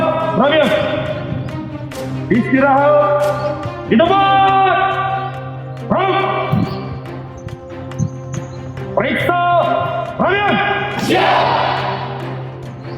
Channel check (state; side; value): identical; both; correlation 1.00